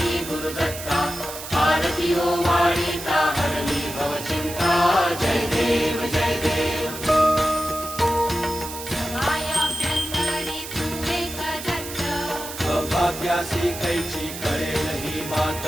गुरुदत्ता आरती हो वाळीता हरली भव चिंता जय देव जय देव सभायाभ्यंतरी तू एक दत्त अभाग्यासी कैची कळेल ही मात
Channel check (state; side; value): noise; right; hiss, 10 dB below the sound